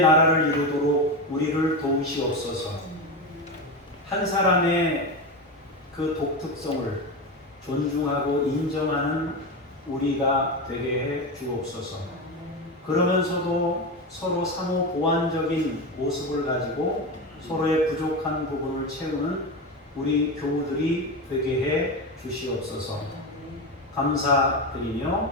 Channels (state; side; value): normal; both; correlation 0.18